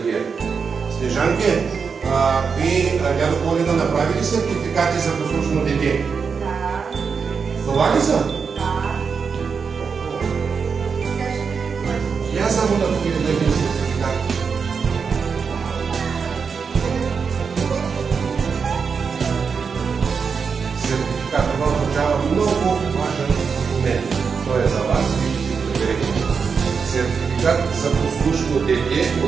Снежанке, ви, дядо Коледа, направили сертификати за послушно дете? Да. Това ли са? Да. Я само да видя един сертификат. Сертификат, това означава много важен документ. Той е за вас и ще си проверите. Сертификат за послушно дете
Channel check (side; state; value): left; quieter; 5.7 dB